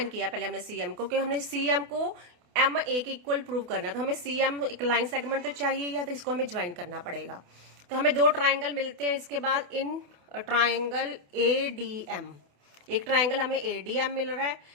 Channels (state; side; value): late; left; 28 ms